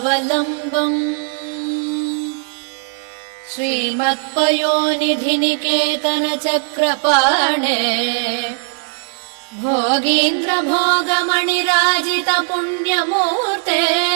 श्रीमत्पयोनिधिनिकेतन चक्रपाणे भोगीन्द्र भोगमणिराजित पुण्यमूर्ते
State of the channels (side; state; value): left; silent; 57 dB below the other